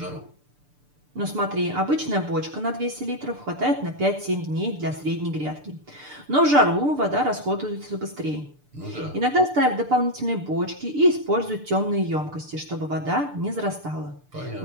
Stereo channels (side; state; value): left; late; 6.8 ms